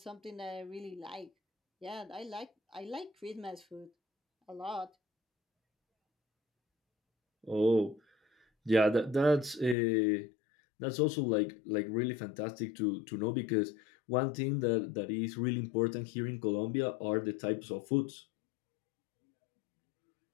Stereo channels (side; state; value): right; drops out; at 9.8 s